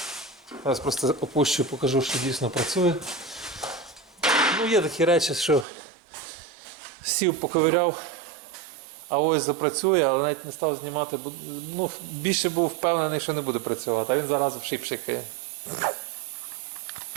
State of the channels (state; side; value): drops out; left; at 5.7 s